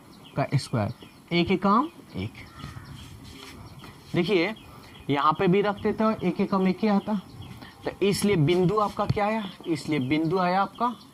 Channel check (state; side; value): identical; both; correlation 1.00